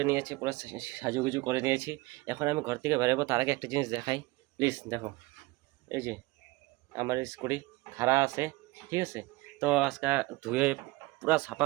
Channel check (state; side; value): quieter; left; 21.4 dB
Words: নিয়েছি, পুরো সাজুগুজু করে নিয়েছি। এখন আমি ঘর থেকে বেরোবো, তার আগে একটা জিনিস দেখাই প্লিজ। দেখো এই যে আমার স্কুটি খাড়া আছে, ঠিক আছে? তো আজকে ধুয়ে পুরো সাফা